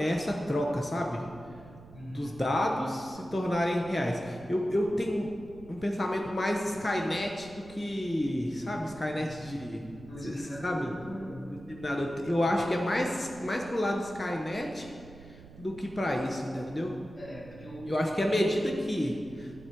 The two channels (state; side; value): noise; right; rumble, 18 dB below the sound